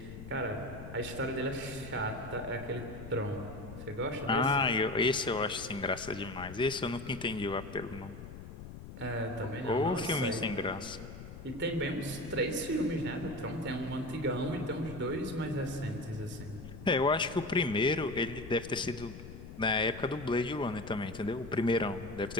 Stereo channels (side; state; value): left; noise; rumble, 12 dB below the sound